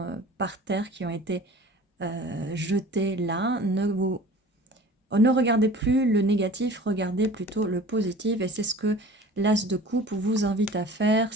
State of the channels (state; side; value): normal; both; correlation 0.43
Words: par terre, qui ont été jetées là, ne regardez plus le négatif, regardez plutôt le positif. Et c'est ce que l'as de coupe vous invite à faire,